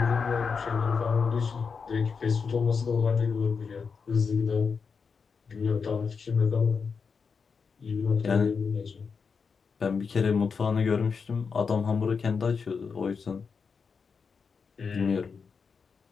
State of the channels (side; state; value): right; quieter; 5.5 dB